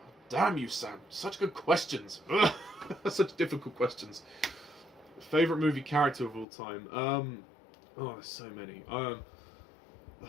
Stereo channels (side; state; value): right; drops out; at 6.5 s